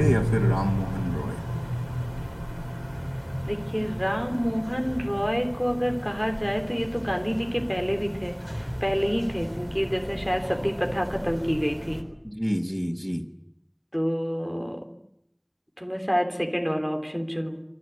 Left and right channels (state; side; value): identical; both; correlation 1.00